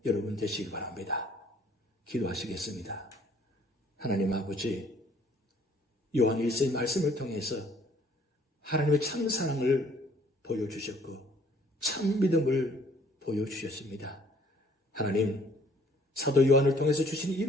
여러분 되시기 바랍니다. 기도하시겠습니다. 하나님 아버지, 요한 1서의 말씀을 통해서 하나님의 참 사랑을 보여주셨고 참 믿음을 보여주셨습니다. 하나님, 사도 요한을 통해서 주신 이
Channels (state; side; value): normal; both; correlation 0.60